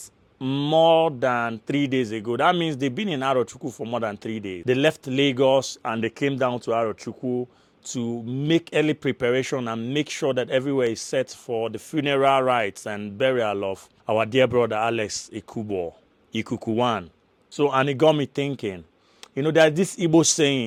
more than 3 days ago. That means they've been in Arochukwu for more than 3 days. They left Lagos and they came down to Arochukwu to make early preparation and make sure that everywhere is set for the funeral rites and burial of our dear brother Alex Ikukuwan. So, and it got me thinking, you know, there's this Igbo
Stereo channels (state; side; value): identical; both; correlation 1.00